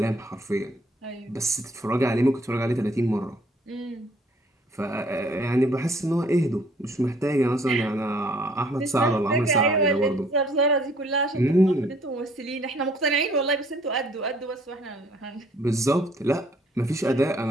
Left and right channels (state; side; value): normal; both; correlation 0.61